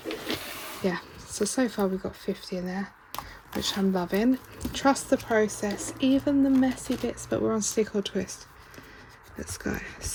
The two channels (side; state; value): both; identical; correlation 1.00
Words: yeah, so far we've got 50 in there, which I'm loving. Trust the process, even the messy bits, but we're on stick or twist. Let's go.